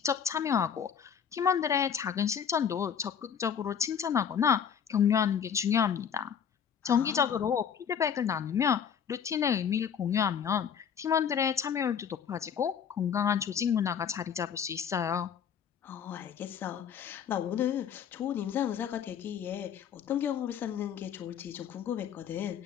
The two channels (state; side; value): quieter; right; 7.8 dB